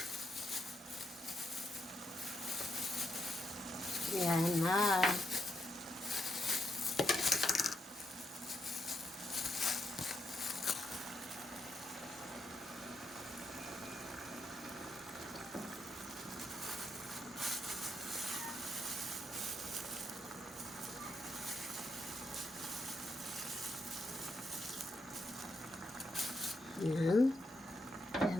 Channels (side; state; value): both; normal; correlation 0.81